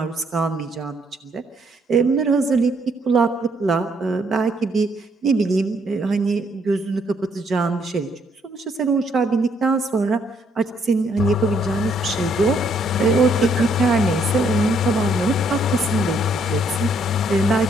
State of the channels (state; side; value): normal; both; correlation 0.69